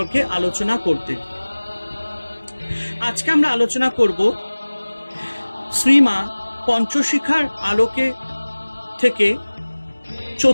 আলোচনা করতে। আজকে আমরা আলোচনা করব শ্রীমা পঞ্চশিখার আলোকে থেকে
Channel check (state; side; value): inverted; both; correlation -1.00